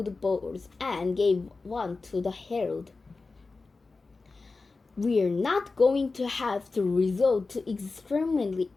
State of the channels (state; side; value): quieter; right; 3.9 dB